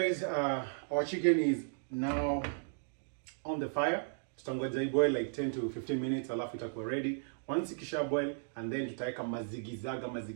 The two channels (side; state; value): left; silent; digital silence